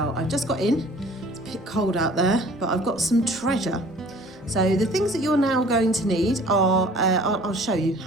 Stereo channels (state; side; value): noise; left; hum, 29 dB below the sound